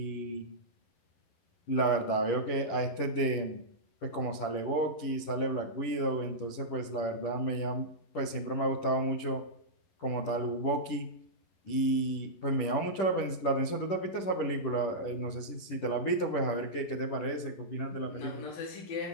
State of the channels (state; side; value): late; right; 10 ms